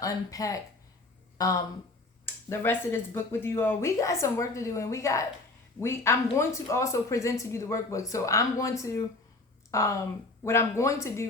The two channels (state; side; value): quieter; right; 3.1 dB